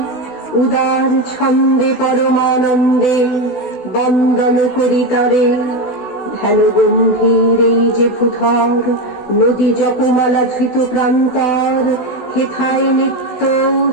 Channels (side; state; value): right; late; 16 ms